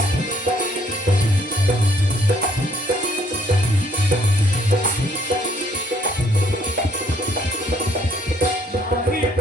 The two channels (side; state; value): both; normal; correlation 0.65